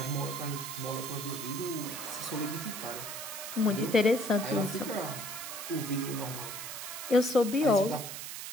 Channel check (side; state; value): right; noise; hiss, 7 dB below the sound